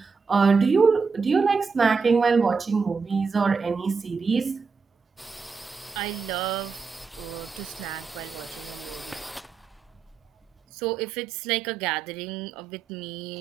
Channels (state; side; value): quieter; left; 5.1 dB